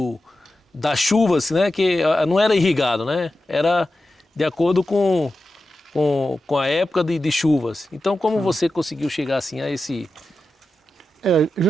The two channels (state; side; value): normal; both; correlation 0.92